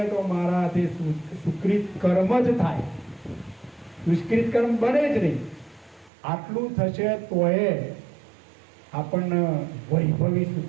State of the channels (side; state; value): left; drops out; at 6.1 s